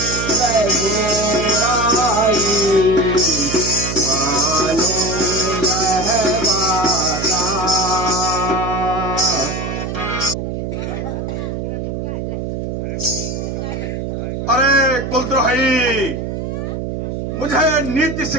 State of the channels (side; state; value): right; noise; hum, 4 dB below the sound